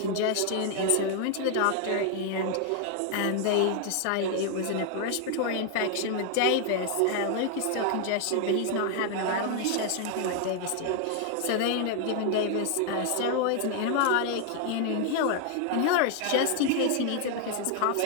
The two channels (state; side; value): different; both; correlation 0.00